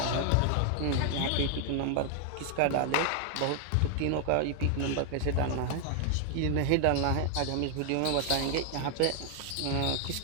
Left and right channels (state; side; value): different; both; correlation 0.00